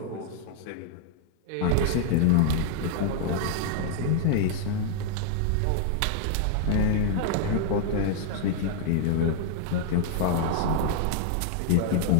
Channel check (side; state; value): both; different; correlation 0.00